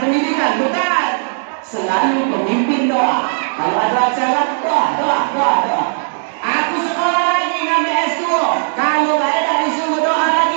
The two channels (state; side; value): silent; left; digital silence